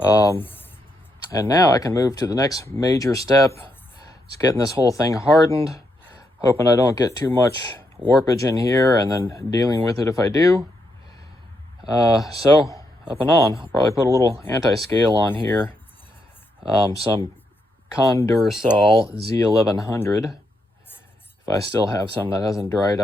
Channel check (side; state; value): both; normal; correlation 0.80